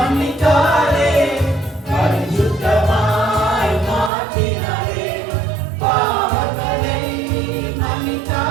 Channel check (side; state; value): left; drops out; at 4.1 s